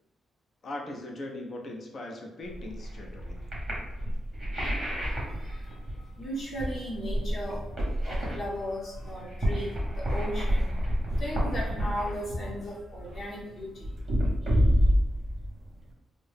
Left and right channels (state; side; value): normal; both; correlation 0.92